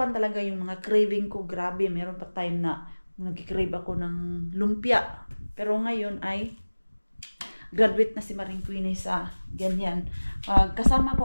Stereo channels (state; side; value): inverted; both; correlation -1.00